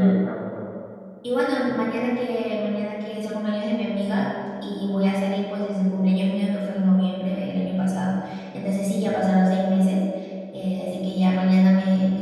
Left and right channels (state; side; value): identical; both; correlation 1.00